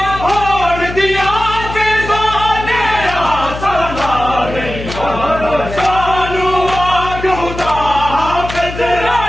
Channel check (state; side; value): noise; left; hum, 9 dB below the sound